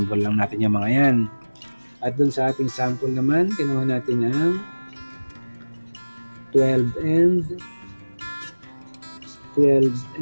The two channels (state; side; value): inverted; both; correlation -1.00